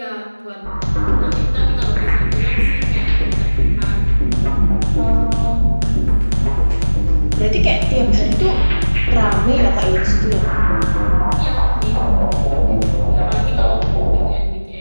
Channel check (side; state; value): both; inverted; correlation -1.00